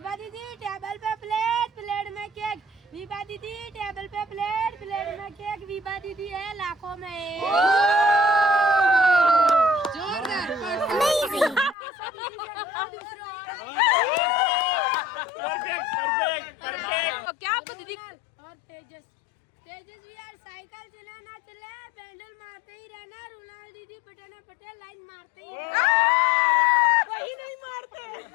दीदी टेबल पे प्लेट में केक. वीपा दीदी टेबल पे प्लेट में केक. वीपा दीदी है लाखों में एक. જોરદાર. क्या दीदी और तेजस भी यार साइकिल चलाना चले पैंडल मारते ही रहना. रोनाल्ड दीदी पटेना पटेल लाइन मारते ही वही नहीं मारते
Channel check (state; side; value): drops out; right; at 11.8 s